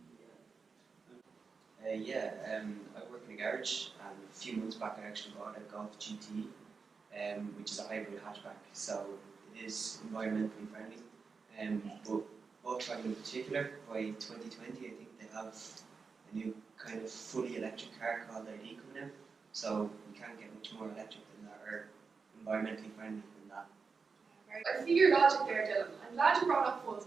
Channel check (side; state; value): left; quieter; 5.0 dB